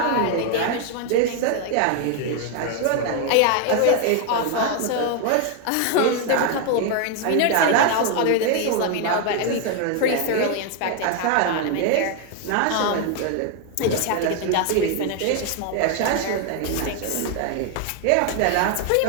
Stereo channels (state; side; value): different; both; correlation 0.01